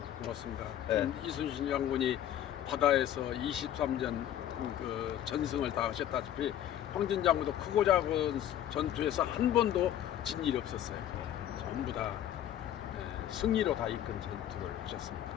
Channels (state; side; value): quieter; right; 11.3 dB